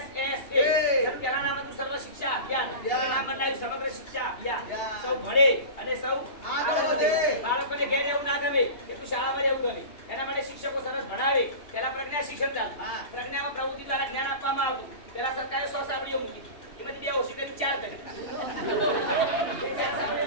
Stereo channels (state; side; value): late; right; 2.8 ms